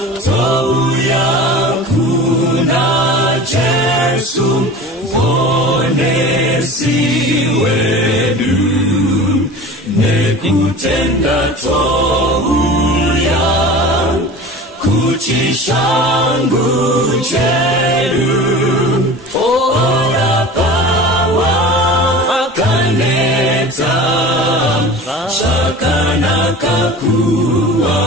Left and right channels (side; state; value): both; normal; correlation 0.37